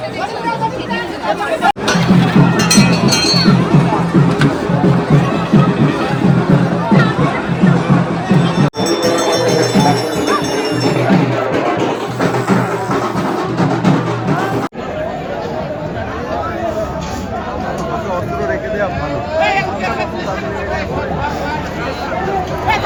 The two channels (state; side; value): identical; both; correlation 1.00